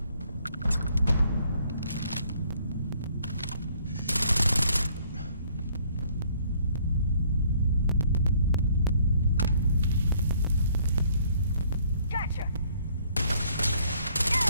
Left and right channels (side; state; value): both; inverted; correlation -0.63